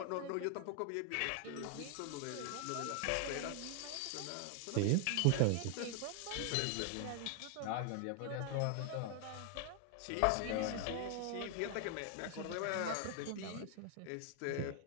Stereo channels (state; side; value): different; both; correlation 0.00